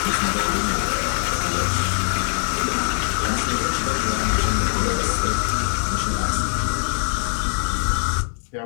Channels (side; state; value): right; silent; digital silence